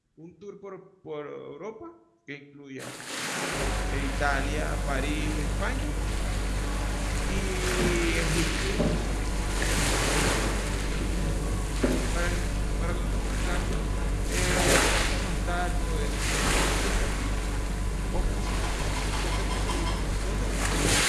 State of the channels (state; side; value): identical; both; correlation 1.00